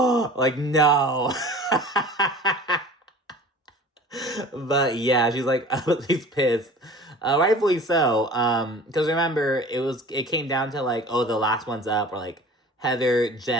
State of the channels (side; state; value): both; normal; correlation 0.43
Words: like, no. But yeah, she's like, she's pissed. Rightfully so. Because remember, it came down to like, oh, the last one's up, or like Heather,